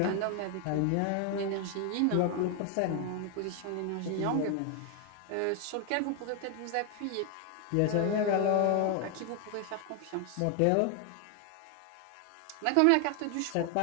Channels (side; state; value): both; different; correlation 0.00